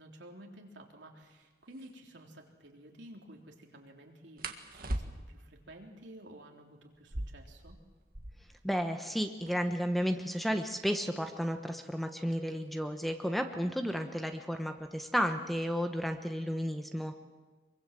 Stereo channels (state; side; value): normal; both; correlation 0.92